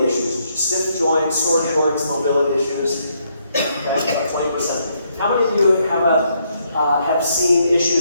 issues, stiff joints, sore joints, mobility issues? Okay, about 20%. How many of you have seen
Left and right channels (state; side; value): inverted; both; correlation -0.74